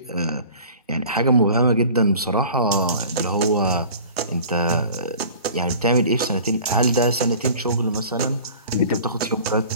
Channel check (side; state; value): both; inverted; correlation -0.44